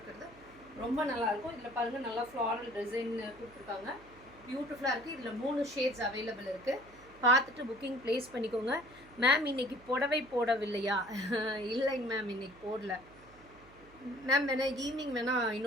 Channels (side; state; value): right; noise; hum, 24 dB below the sound